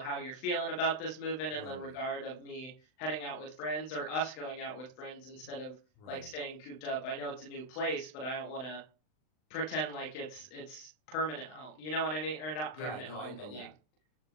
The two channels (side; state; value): right; late; 39 ms